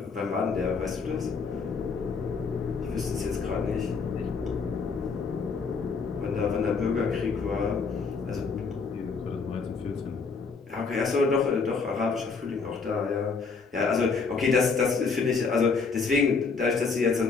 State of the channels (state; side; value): quieter; right; 4.8 dB